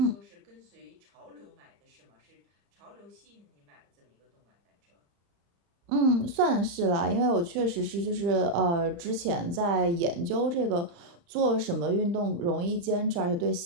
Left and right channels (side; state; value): left; late; 35 ms